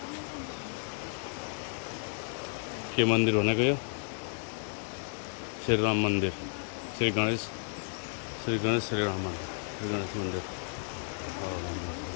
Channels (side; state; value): right; silent; 56 dB below the other